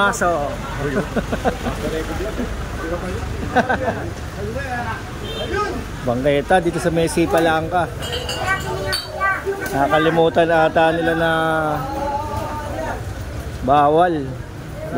Bangketa dito sa Messi Palangka. Nakalimutan ata nila na Bawal.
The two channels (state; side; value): identical; both; correlation 1.00